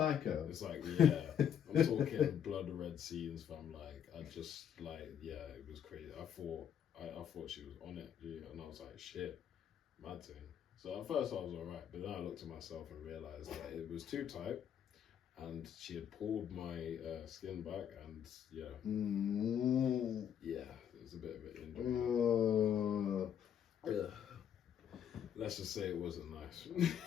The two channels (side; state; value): right; quieter; 8.9 dB